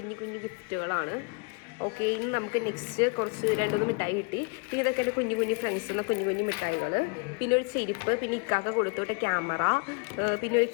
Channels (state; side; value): quieter; right; 33.5 dB